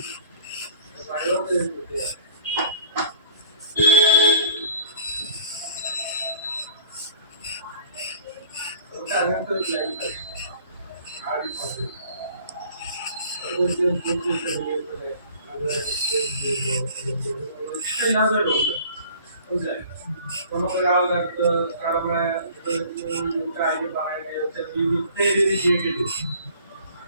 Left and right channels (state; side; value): inverted; both; correlation -0.52